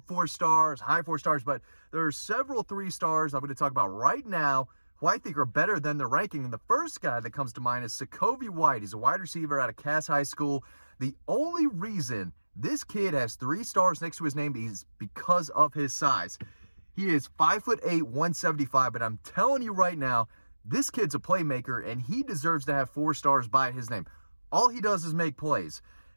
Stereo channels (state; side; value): inverted; both; correlation -1.00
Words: 4 stars, high 4 stars, but there are several 3 stars I'm going to talk about right now who I think are better than their ranking. And the first guy that comes to mind is Sekovie White. He's a wide receiver out of Cass High School. The only reason this kid has 3 stars next to his name is because of his size. He is 5'8", 175, but I'm telling you right now, this kid's a playmaker, and he deserves to have 4 stars by his name. All he does is make plays.